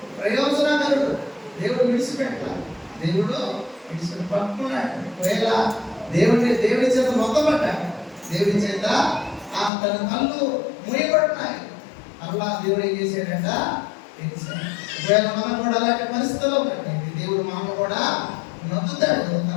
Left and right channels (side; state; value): right; drops out; at 9.7 s